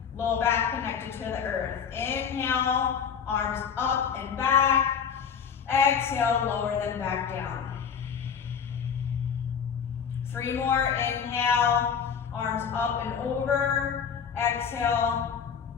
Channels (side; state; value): right; quieter; 7.1 dB